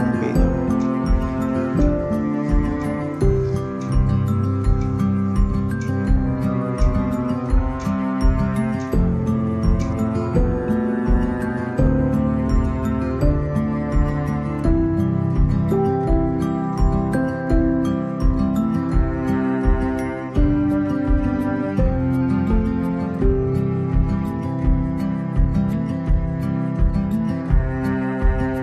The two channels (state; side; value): identical; both; correlation 1.00